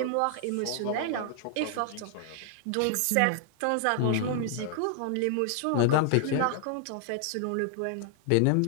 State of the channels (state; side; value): different; both; correlation -0.01